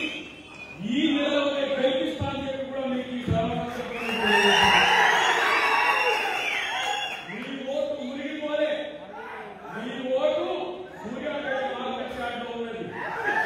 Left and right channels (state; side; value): identical; both; correlation 1.00